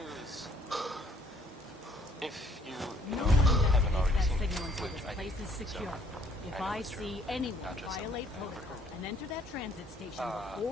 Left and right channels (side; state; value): both; normal; correlation 0.63